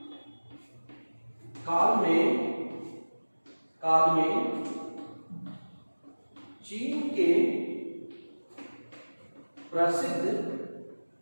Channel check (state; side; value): inverted; both; correlation -1.00